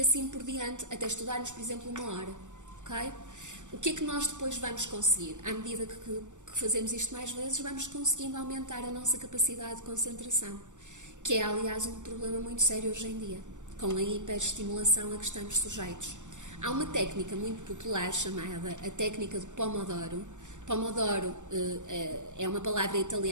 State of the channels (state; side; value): late; left; 0.85 ms